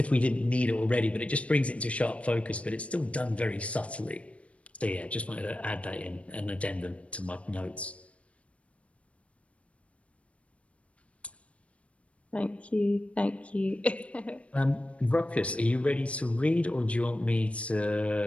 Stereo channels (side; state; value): right; late; 0.063 ms